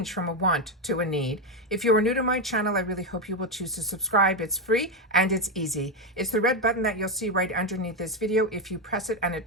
from a want to a need. If you are new to my channel, I really hope you will choose to subscribe. It's free and it's easy. It's the red button that you'll see right underneath this video. If you press it and it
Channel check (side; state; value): both; normal; correlation 0.08